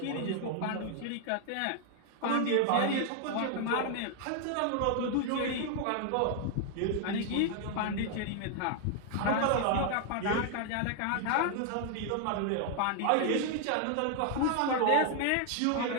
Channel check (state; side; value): different; both; correlation 0.00